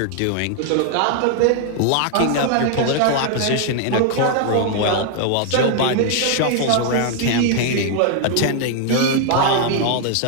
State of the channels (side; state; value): both; different; correlation 0.00